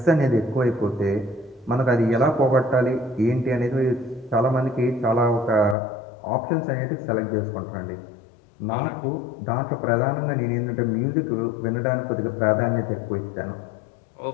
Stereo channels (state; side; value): drops out; right; at 5.8 s